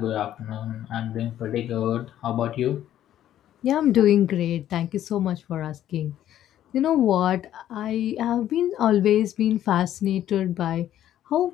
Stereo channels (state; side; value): quieter; right; 11.8 dB